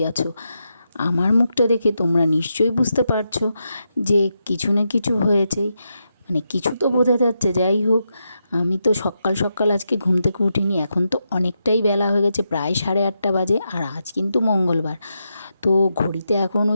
আছো। আমার মুখটা দেখে তোমরা নিশ্চয়ই বুঝতে পারছো যে কিছু না কিছু হয়েছেই, মানে কিছু তো বোঝা যাচ্ছে। যাই হোক, আমি তো সকাল সকাল আজকে ঘুম থেকে উঠিনি। এখন তো অনেকটাই বেলা হয়ে গেছে, প্রায় 8:30 বাজে। আর আজ কিন্তু মঙ্গলবার। তো ঘড়িতে এখন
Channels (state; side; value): inverted; both; correlation -0.85